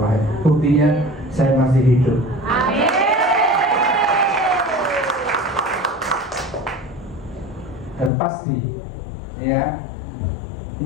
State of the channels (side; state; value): right; drops out; at 8.1 s